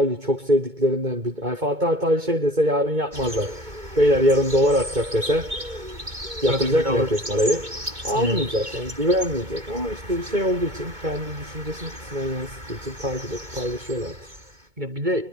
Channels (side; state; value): left; late; 2.2 ms